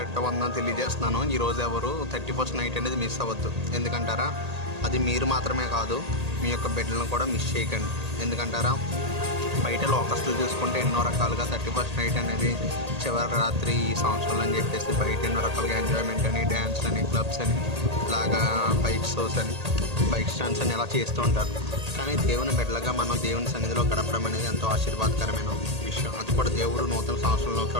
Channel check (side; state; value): left; late; 1.8 ms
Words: వందనాలు తెలియజేస్తున్నాను. ఈరోజు ఎవరు 31st నైట్ అనేది మిస్ అవ్వద్దు. ఎందుకంటారా, అది మీరు మాత్రమే కాదు, మీ యొక్క బిడ్డలను కూడా మిస్ చేయకండి. ఎందుకంటారా, బయట లోకస్తులు చూసుకుంటే ఎన్నో రకాలుగా 31st నైట్ అనేది చివరి రాత్రి ఈ సంవత్సరాలు అని చెప్పేసి బయట ఎన్నో రకాలుగా ఎంజాయ్మెంట్ అని, డ్యాన్స్ అని, క్లబ్స్ అని, ఇలాగా బైక్ షోస్ అని, బైక్ స్టాండ్స్ అని ఇలా చేస్తూ ఉంటారు. కానీ దేవుని బిడ్డలుగా మనం దేవుని సన్నిధిలో గడపడం అనేది ఎంతో ఆశీర్వాదకరమైన విషయం. అది కూడా దేవుడు నూతన సంవత్సరంలోకి